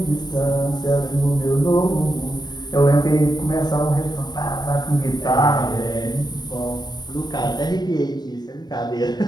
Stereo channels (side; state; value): right; late; 0.20 ms